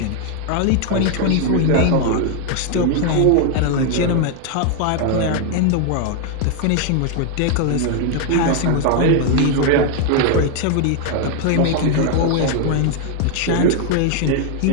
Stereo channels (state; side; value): different; both; correlation 0.00